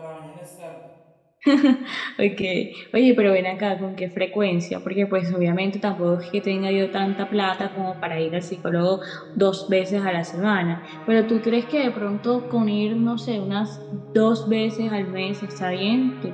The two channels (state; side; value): identical; both; correlation 1.00